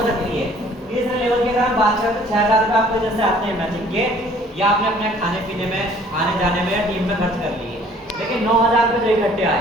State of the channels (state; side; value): normal; both; correlation 0.56